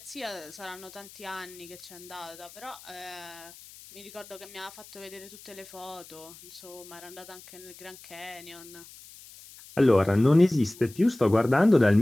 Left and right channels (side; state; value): left; noise; hiss, 19 dB below the sound